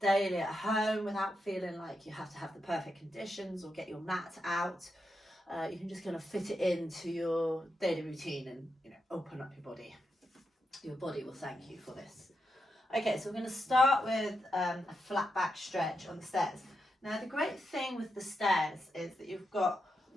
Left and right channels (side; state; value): both; normal; correlation 0.85